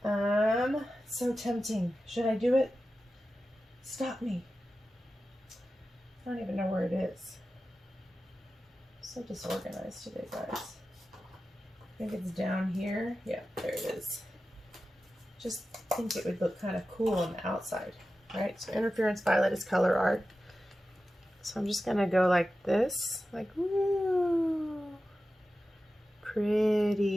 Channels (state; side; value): normal; both; correlation 0.93